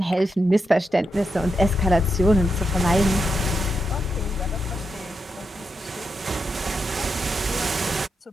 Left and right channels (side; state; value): both; normal; correlation 0.85